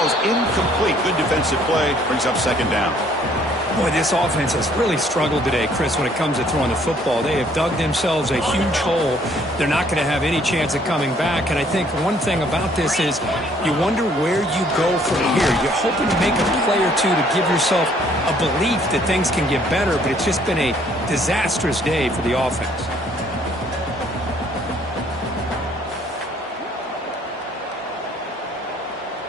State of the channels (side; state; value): both; normal; correlation 0.62